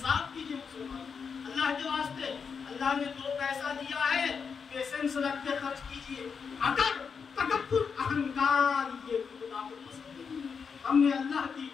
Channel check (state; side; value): quieter; right; 6.0 dB